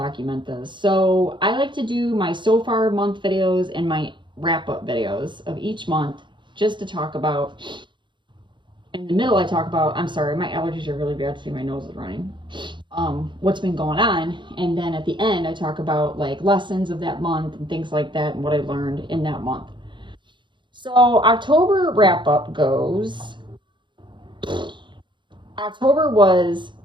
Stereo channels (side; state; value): left; late; 0.23 ms